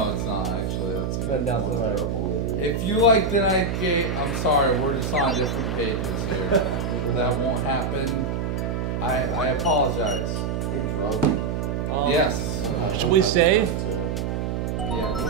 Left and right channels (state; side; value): noise; right; hum, 1 dB below the sound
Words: it's not actually. That's a Then good down to the right. Terrible movie. If you like the ninth gate, I'm sorry, we're just on different pages here. That won't happen. I apologize. You're drunk. Yes. Should we say? Yeah,